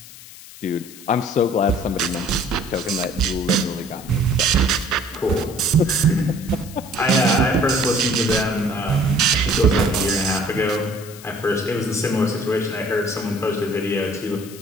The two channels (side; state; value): left; noise; hiss, 18 dB below the sound